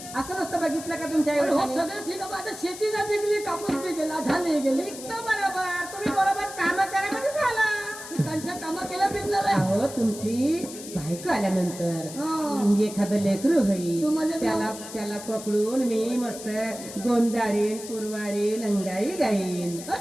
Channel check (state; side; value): noise; left; hiss, 12 dB below the sound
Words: असं नसतं बघितलं का तुमच्या आई हो वडिलांनी? सगळं ठीक आहे आता शेती नाही पिकली कापूस पिकला झाले गेले पिकतं बरोबर तुम्ही बरोबर काम करायमध्ये झाला. त्यांच्या कामा केल्या पिकणार आहे. अहो तुमची बायको आल्यानंतर हा. एखादं लेकरू होईल तुम्हाला त्याला पकडून मी मस्त गोंजाळीन पुरवाळीन अंगाई गाईन